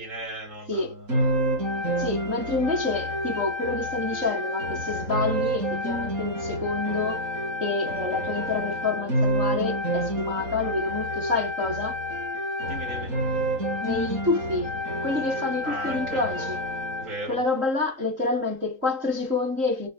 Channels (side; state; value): left; late; 3.8 ms